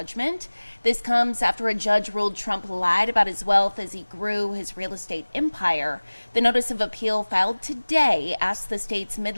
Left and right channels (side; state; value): both; inverted; correlation -1.00